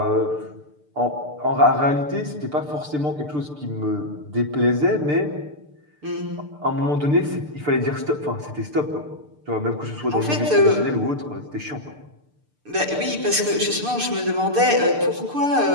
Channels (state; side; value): late; left; 6.7 ms